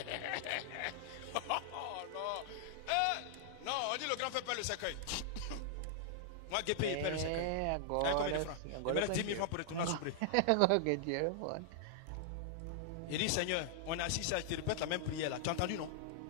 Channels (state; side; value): different; both; correlation -0.01